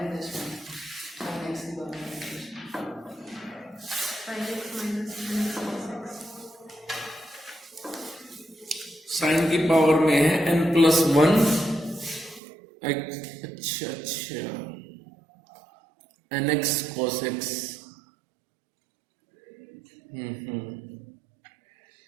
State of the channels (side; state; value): left; drops out; at 12.4 s